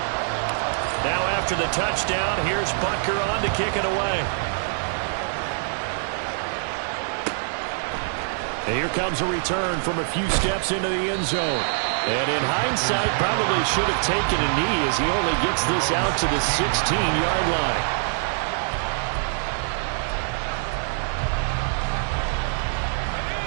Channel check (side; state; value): left; silent; digital silence